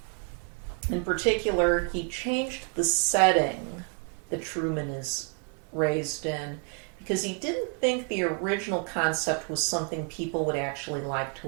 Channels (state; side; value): quieter; left; 36.9 dB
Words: In particular, he changed the setting that Truman is raised in, because he didn't think the original concept was something people would actually like to